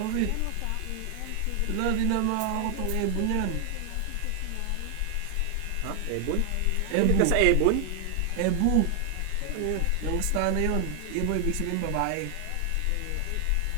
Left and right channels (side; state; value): both; different; correlation 0.00